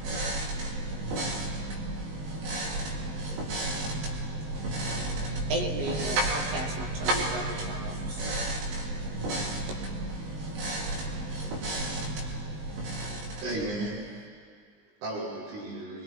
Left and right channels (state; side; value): late; left; 19 ms